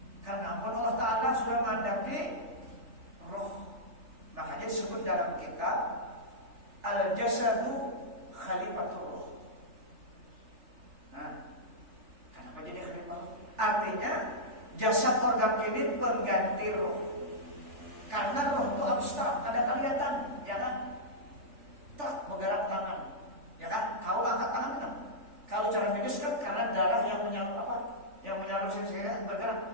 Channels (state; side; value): late; left; 3.4 ms